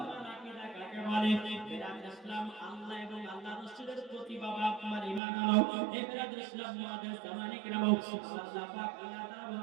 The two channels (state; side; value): drops out; left; at 5.2 s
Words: আকীদা কাকে বলে বেরাদ ইসলাম আল্লাহ এবং আল্লাহর রাসূলের প্রতি বাবা আপনার ঈমান আনো এই বেরাদ ইসলাম মুআজ্জাজ সামানী کرام আল্লাহ পাক আল্লাহ তাআলা